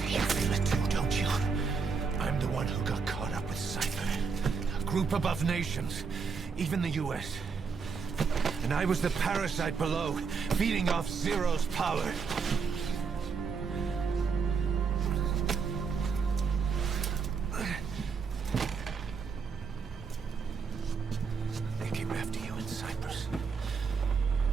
You feel it too, don't you? I'm the one who got caught up with Cypher. A group above nations, even the US. And I was the parasite below, feeding off Zero's power. They came after you in Cyprus.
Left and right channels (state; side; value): quieter; left; 5.4 dB